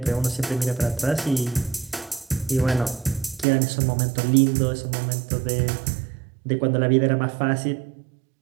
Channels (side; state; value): left; drops out; at 3.5 s